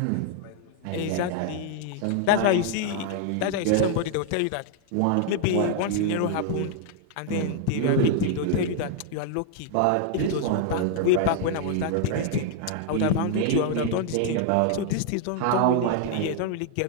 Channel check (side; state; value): both; different; correlation 0.00